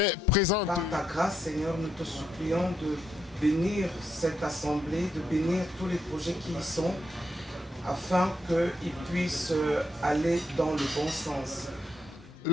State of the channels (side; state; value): both; normal; correlation 0.78